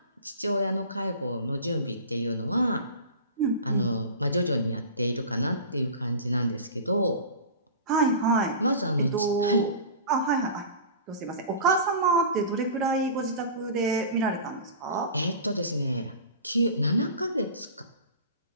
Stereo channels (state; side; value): inverted; both; correlation -0.35